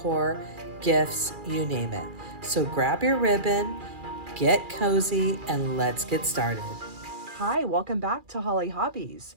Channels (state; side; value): late; left; 2.4 ms